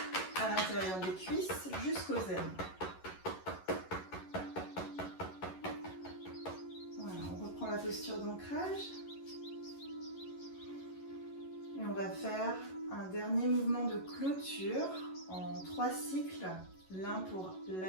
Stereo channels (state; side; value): late; right; 11 ms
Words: à l'intérieur des cuisses jusqu'aux aines. Voilà, on reprend la posture d'ancrage. Et on va faire un dernier mouvement de clôture en 3 cycles. L'un pour